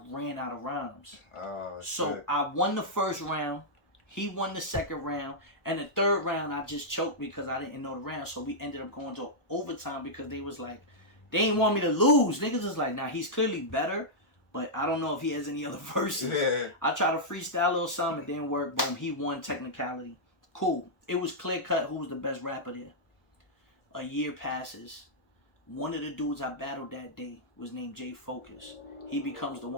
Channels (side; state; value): right; late; 1.0 ms